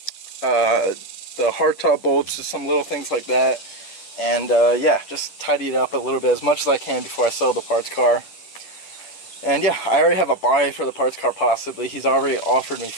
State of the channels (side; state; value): right; late; 10 ms